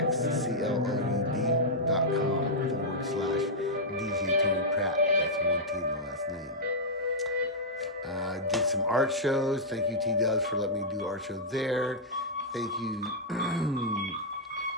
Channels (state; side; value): normal; both; correlation -0.08